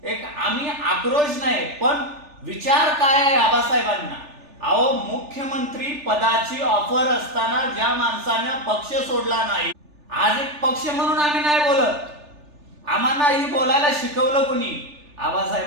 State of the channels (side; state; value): left; late; 3.4 ms